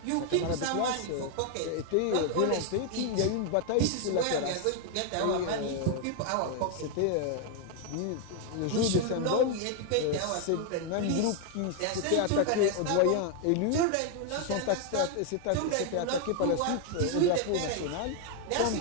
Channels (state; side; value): different; both; correlation 0.00